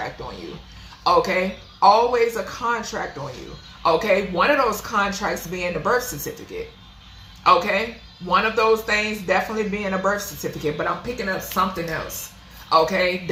on you. Okay? Always a contract on you. Okay? One of those contracts being the birth certificate. Okay? One of those things definitely being a birth certificate, but I'm picking up something else. Okay,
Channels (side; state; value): both; identical; correlation 1.00